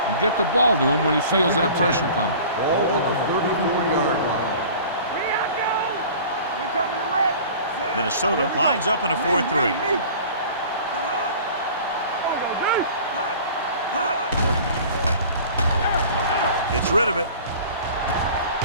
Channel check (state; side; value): inverted; both; correlation -0.43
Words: and get the ball to him when he feels that pressure coming. Ball on the 34-yard line. Here I go. We're coming to wreck. Minnesota lines up in a 4-3. Gets rid of it.